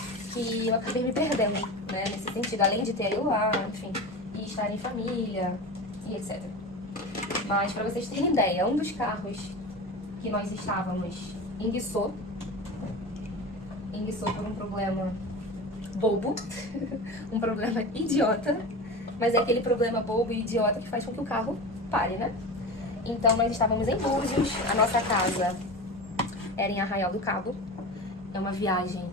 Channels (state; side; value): normal; both; correlation 0.29